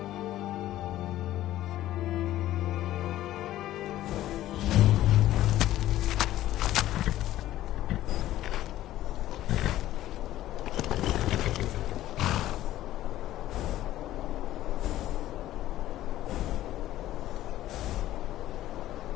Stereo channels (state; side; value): quieter; right; 14.1 dB